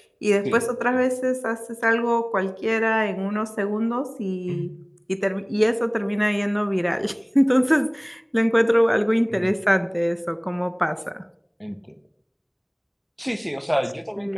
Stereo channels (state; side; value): identical; both; correlation 1.00